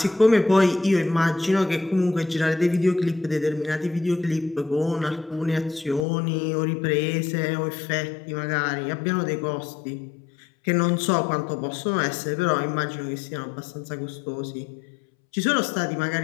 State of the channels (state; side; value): drops out; right; at 6.1 s